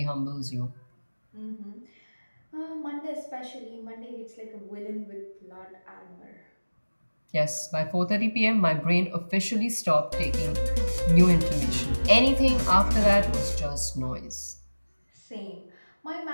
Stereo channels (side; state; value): both; inverted; correlation -1.00